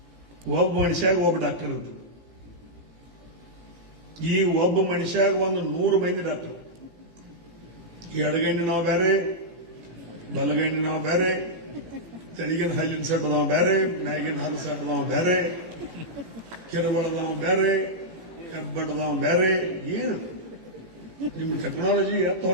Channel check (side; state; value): left; late; 17 ms